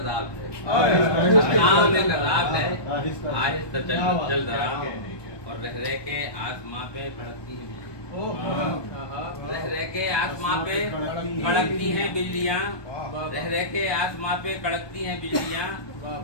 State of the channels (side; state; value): right; late; 1.2 ms